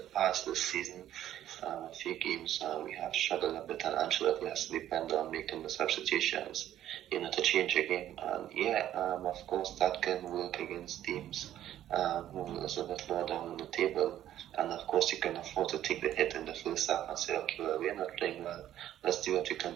past this season, a few games we have struggled a bit, and Ancelotti has to depend on making the substitutions, to change a game. And of course that can work against teams who is a bit lower down on the table. And of course you can afford to take the hit in the first half and say, okay, well, we're not playing well. Let's see what we can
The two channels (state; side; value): quieter; left; 12.1 dB